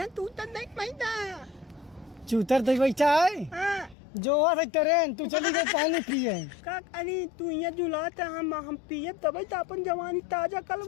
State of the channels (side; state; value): right; drops out; at 4.0 s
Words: तू तो नहीं पैदा। चूतर दे बैठा है। हाँ। जो है ट्रेन तू चली गई पानी पिए। का अरे तू यहाँ जुलात है, हम पिए तब तो अपन जवानी ताजा